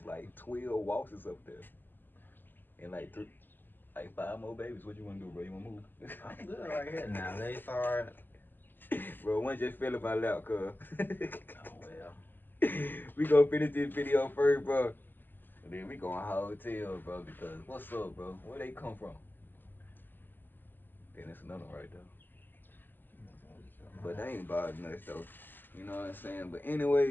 like 12 waltzes up there. And like 5 more babies. What you wanna do, bro? You wanna move? I'm good right here now. They start. Bro, one just fell in my lap, cuz. Oh well. We gonna finish this video first, bro. And then we gonna hotel, bro, because what's up, bro? Where they come from? Then it's another one right there. But they ain't bothering us though. You know what I'm saying? But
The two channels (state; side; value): late; right; 0.091 ms